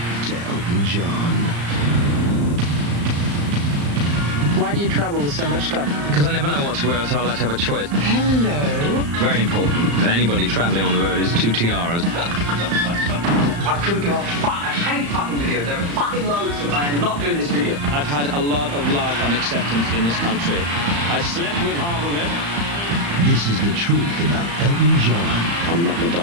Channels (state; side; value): late; left; 35 ms